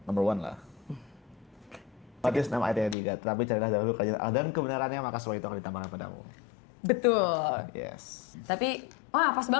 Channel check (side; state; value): right; drops out; at 3.0 s